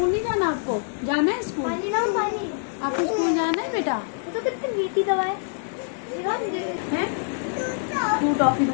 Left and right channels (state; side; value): silent; right; 62 dB below the other